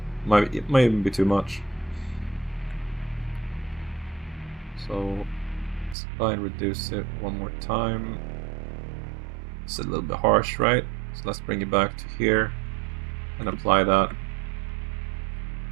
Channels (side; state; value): left; drops out; at 6.0 s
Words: It might even be too much. So let's try and reduce it one more time. It's a little bit harsh, right? So let's bring it back to here and apply that.